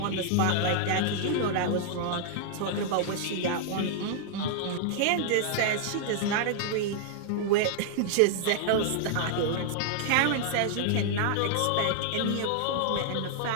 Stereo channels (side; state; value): both; different; correlation -0.01